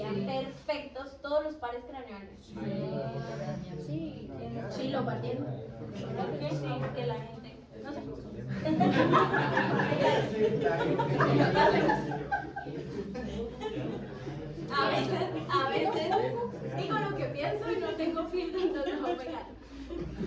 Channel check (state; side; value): identical; both; correlation 1.00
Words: perfectos todos los pares craneales. Sí, lo partieron. ¿Por qué? Sí, porque la gente, no sé. A veces digo lo que pienso y no tengo filtro, entonces voy a pegar.